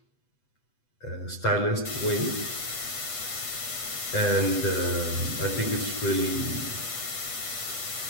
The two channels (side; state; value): right; late; 8.1 ms